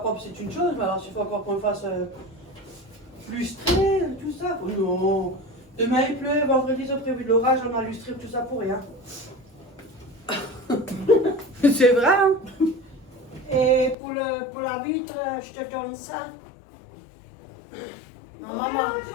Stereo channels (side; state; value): right; drops out; at 14.0 s